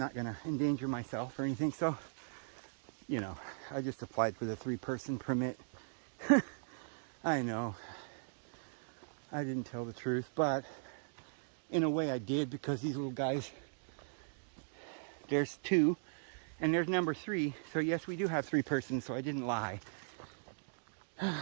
going to endanger myself or anything, so, you know, I just applied for the 3-person permit. I know I didn't tell the truth, but in a way I did, because these little guys, there's 2 and there's number 3, so yes, we do have 3 persons, so I didn't lie.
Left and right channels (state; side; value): silent; left; digital silence